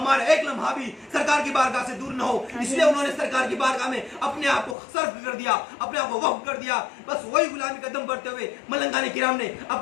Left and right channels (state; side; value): drops out; right; at 4.8 s